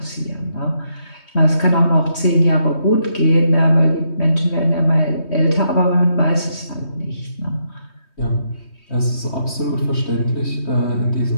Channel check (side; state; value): right; late; 3.2 ms